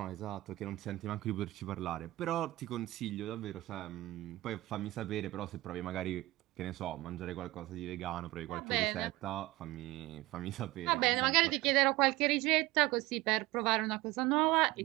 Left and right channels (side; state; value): left; quieter; 18.9 dB